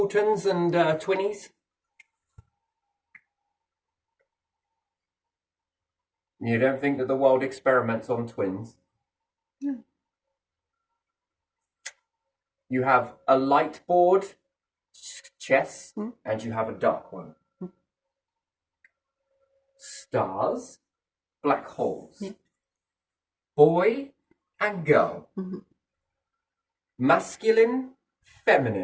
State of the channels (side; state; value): both; identical; correlation 1.00